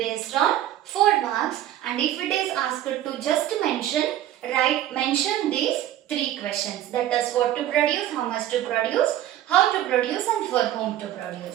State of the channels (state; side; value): quieter; left; 12.6 dB